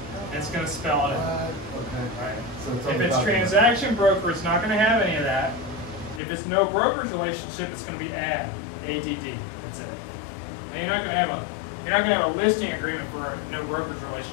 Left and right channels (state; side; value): drops out; right; at 6.2 s